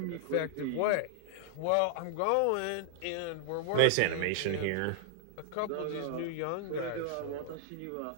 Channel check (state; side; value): different; both; correlation 0.00